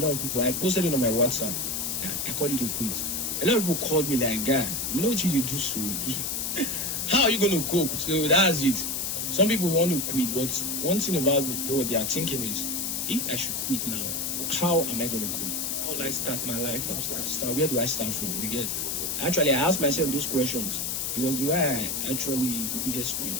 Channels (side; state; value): left; noise; hiss, 1 dB below the sound